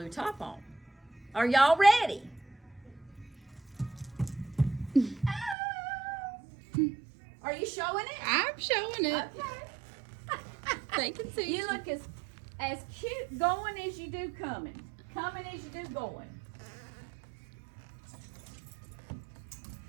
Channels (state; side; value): drops out; left; at 5.6 s